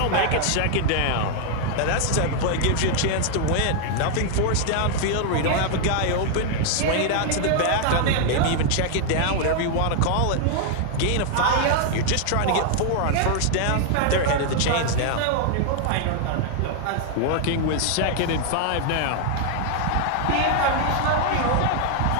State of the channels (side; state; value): both; different; correlation 0.00